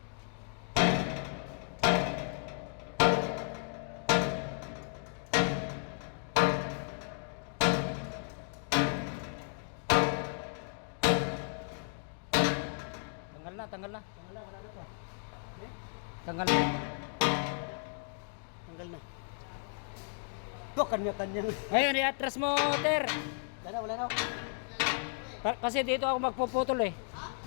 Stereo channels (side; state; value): right; silent; 55 dB below the other